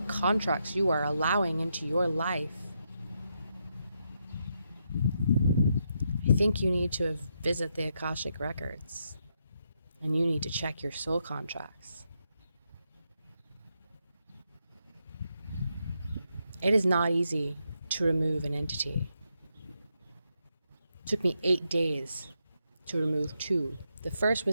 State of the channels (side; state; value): both; inverted; correlation -0.81